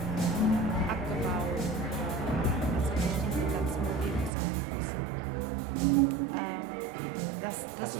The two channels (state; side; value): drops out; left; at 4.3 s